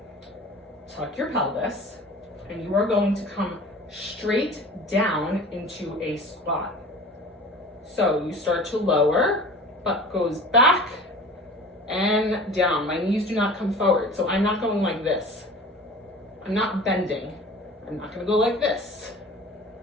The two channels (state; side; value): normal; both; correlation 0.41